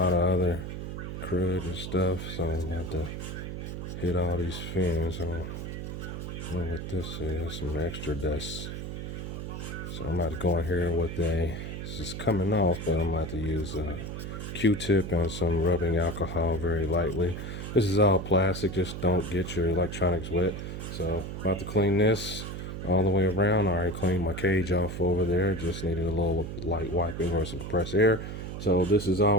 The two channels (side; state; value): right; noise; hum, 6 dB below the sound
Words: of other crud and stuff, so I'm gonna have to hit all these fins. I don't know what this is, some extra dust. So I'm about to go in here with this is coming off, but I'm about to use a Q-tip and some rubbing alcohol very lightly. This is all plastic, just don't get your electronics wet. So about to clean this all the way around. I already cleaned my cage off over there, just needed a little light wiping or some compressed air. So this is